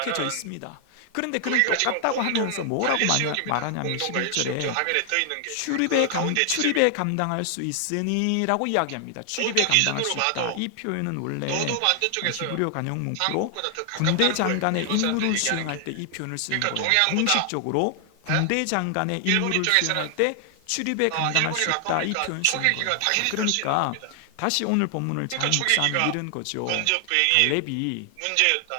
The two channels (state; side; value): different; both; correlation 0.00